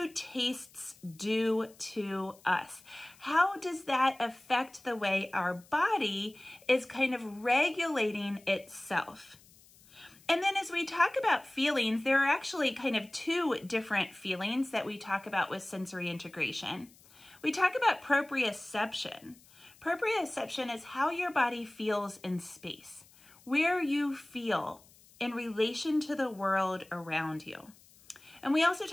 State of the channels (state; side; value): noise; left; hiss, 26 dB below the sound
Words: tastes do to us? How does that affect the way our body is kind of regulating itself? And then as we talk about feelings, there are actually kind of two different feelings that we talk about with sensory integration. We talk about proprioception. Proprioception is how your body feels in space, where you feel in relation to the world around you. And we also